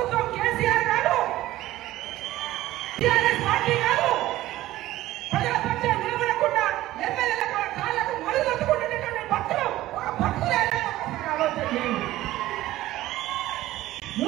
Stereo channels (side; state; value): left; quieter; 15.6 dB